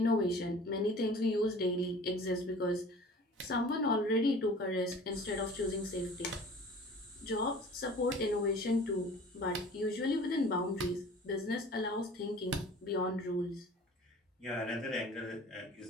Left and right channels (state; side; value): normal; both; correlation 0.45